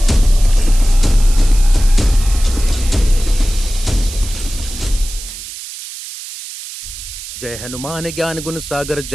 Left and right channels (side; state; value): right; noise; hiss, 12 dB below the sound